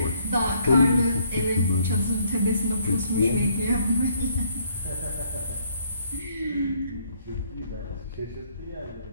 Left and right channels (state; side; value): inverted; both; correlation -0.66